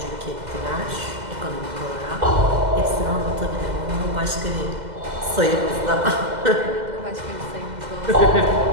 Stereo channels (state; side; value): late; left; 2.0 ms